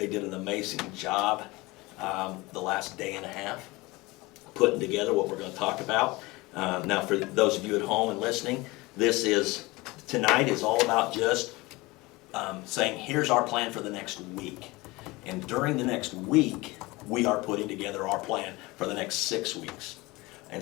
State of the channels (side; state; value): right; quieter; 22.3 dB